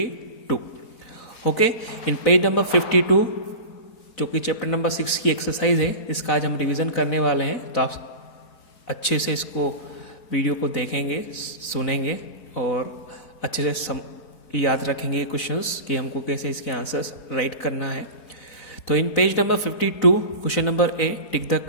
Okay, in page number 52 जो कि chapter number 6 की exercise है, इसका आज हम revision करने वाले हैं। तो आप अच्छे से इसको वीडियो को देखेंगे, सुनेंगे और अच्छे से याद रखेंगे क्वेश्चंस कि हमको कैसे इसके आंसर्स राइट करना है। तो in page number 52 question number A, tick the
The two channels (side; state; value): right; late; 4.0 ms